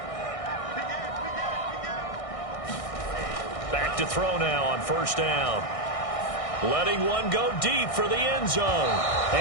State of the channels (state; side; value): late; right; 1.6 ms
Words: Back to throw now on 1st down. Letting one go deep for the end zone.